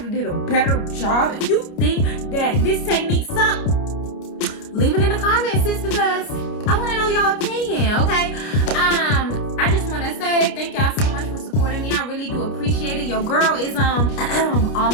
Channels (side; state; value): right; late; 29 ms